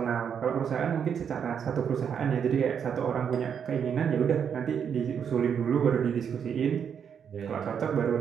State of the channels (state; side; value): quieter; left; 7.6 dB